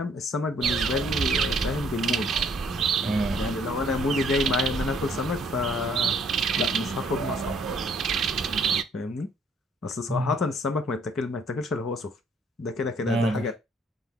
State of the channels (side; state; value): both; normal; correlation 0.63